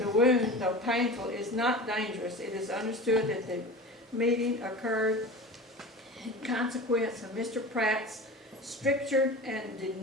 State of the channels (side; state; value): both; normal; correlation 0.33